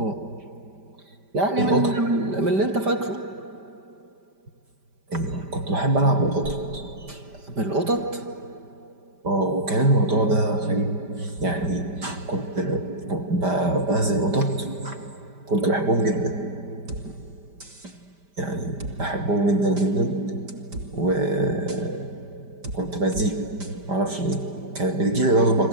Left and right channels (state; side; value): late; left; 5.1 ms